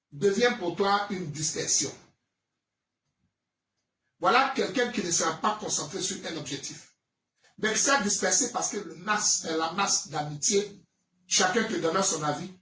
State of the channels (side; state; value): both; identical; correlation 1.00